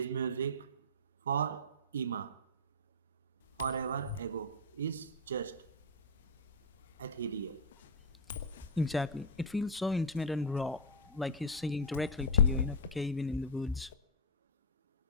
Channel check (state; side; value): normal; both; correlation 0.00